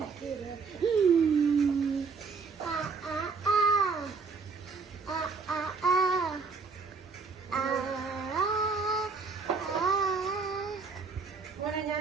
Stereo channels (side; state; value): left; quieter; 4.8 dB